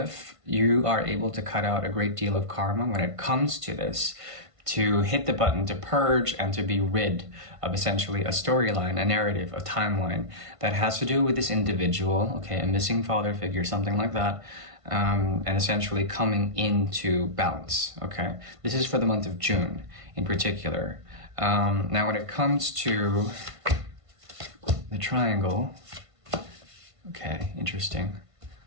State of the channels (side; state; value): left; late; 1.5 ms